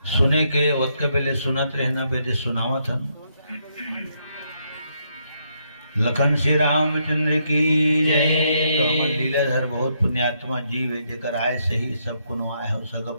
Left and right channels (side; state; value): both; inverted; correlation -0.76